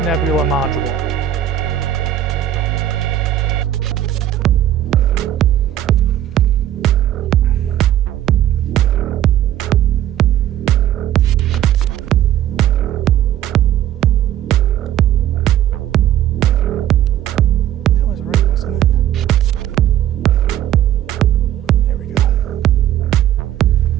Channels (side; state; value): left; quieter; 11.7 dB